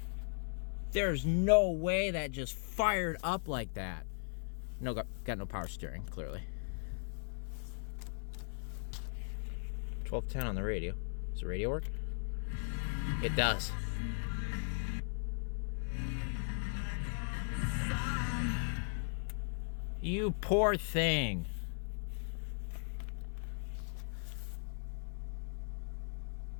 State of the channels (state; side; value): silent; right; 52 dB below the other